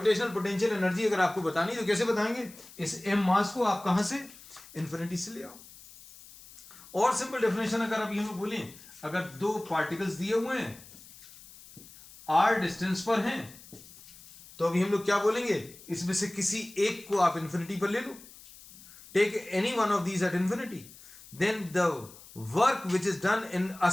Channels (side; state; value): left; noise; hiss, 20 dB below the sound